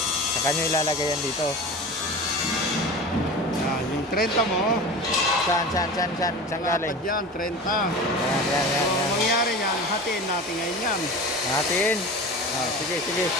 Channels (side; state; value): both; normal; correlation 0.33